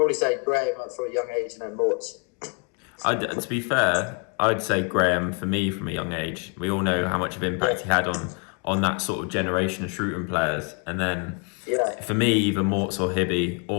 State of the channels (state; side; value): quieter; right; 35.3 dB